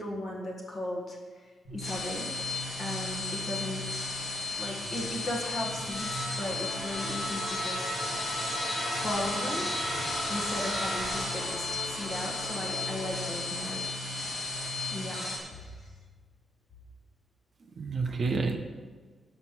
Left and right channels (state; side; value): normal; both; correlation 0.75